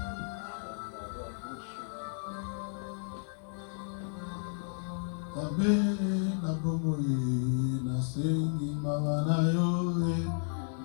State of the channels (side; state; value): right; silent; digital silence